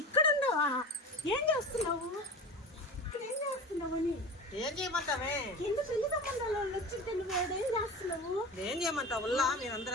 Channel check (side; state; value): both; normal; correlation 0.32